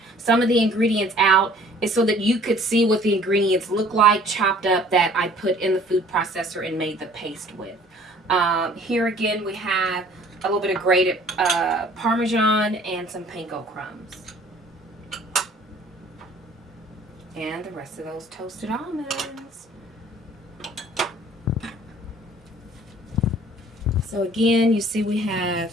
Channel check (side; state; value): both; normal; correlation 0.53